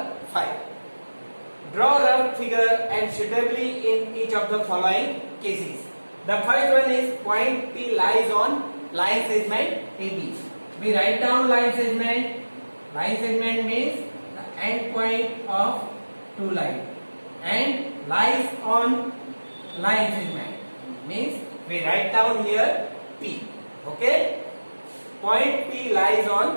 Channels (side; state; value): both; inverted; correlation -1.00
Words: 5. Draw rough figure and suitably in each of the following cases. The first one is point P lies on line segment AB. We write down line segment. Line segment means the end point of two lines and lies on line segment means we write down here P. Okay? Point P lies